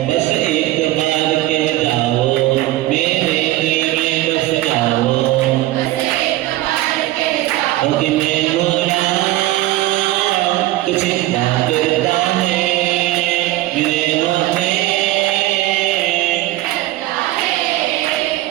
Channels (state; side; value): quieter; left; 16.3 dB